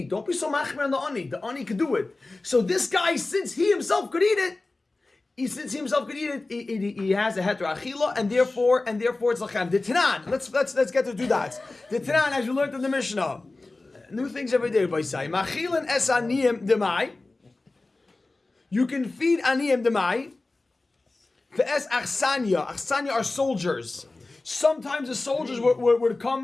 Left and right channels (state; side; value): quieter; right; 3.2 dB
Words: don't be so machmer on the ani. The ani could do it. So this guy, since he himself could eat it, he has a heter achila, and therefore it's lachem. The Tanan. Let's get to do that. The Tanan, as you learned in the Mishnah, new things every day. By say machilan es aniyim demai. You can feed aniyim demai. Ve'es achsanya. Achsanya are soldiers. Sometimes the soldiers would